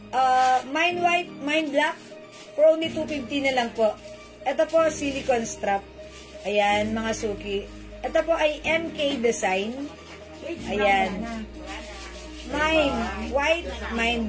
mine white, mine black, for only 250 na lang po. Ito po, silicone strap. Ayan, mga suki. Ito po ay MK design. Ayan. Mine white, mine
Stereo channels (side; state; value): both; identical; correlation 1.00